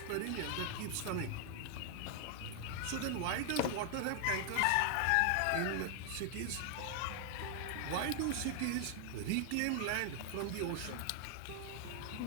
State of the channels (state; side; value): different; both; correlation 0.00